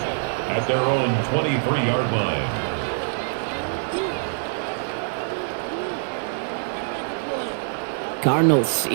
at their own 23-yard line. Cardinals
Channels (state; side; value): silent; left; digital silence